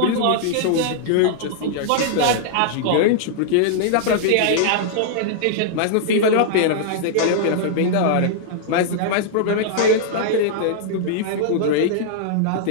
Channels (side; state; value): both; different; correlation -0.01